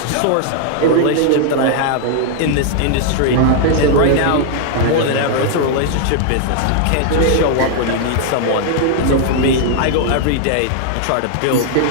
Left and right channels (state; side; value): different; both; correlation 0.00